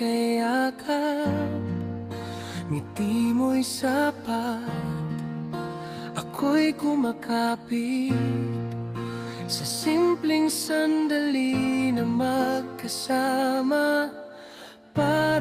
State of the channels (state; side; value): identical; both; correlation 1.00